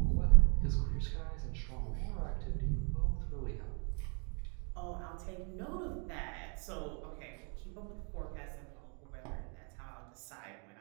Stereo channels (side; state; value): left; quieter; 37.9 dB